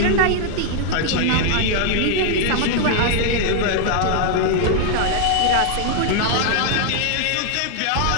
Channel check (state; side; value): different; both; correlation 0.00